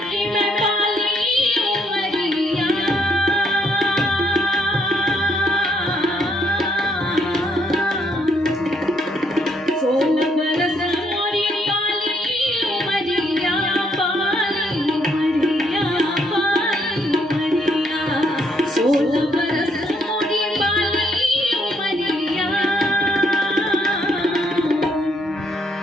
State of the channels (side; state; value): both; normal; correlation 0.71